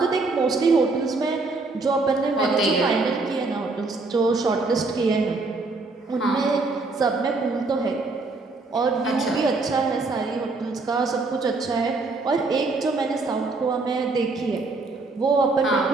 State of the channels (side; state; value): left; quieter; 3.6 dB